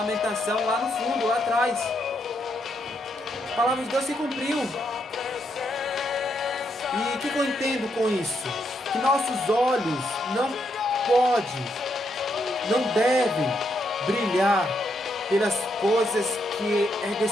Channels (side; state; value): both; normal; correlation 0.78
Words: lá no fundo, lá atrás. A palavra de Deus se cumpriu. E o que eu entendo com isso? Que nossos olhos não devem brilhar pelas coisas que é